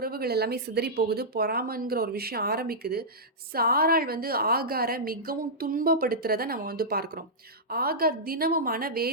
எல்லாமே சிதறி போகுது. பொறாமைங்கிற ஒரு விஷயம் ஆரம்பிக்குது. சாராள் ஆகார மிகவும் துன்பப்படுத்துறத நம்ம பார்க்கிறோம். ஆகார் தினமும்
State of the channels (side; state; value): both; normal; correlation -0.12